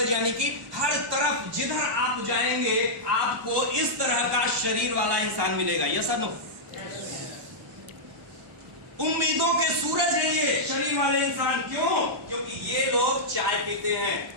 यानी कि हर तरफ जिधर आप जाएंगे आपको इस तरह का शरीर वाला इंसान मिलेगा। यस और नो? उम्मीदों के सूरज है ये शरीर वाले इंसान। क्यों? क्योंकि ये लोग चाय पीते हैं,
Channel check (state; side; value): late; left; 1.1 ms